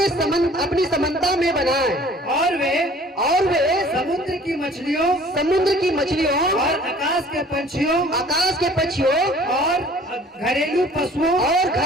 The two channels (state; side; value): normal; both; correlation 0.51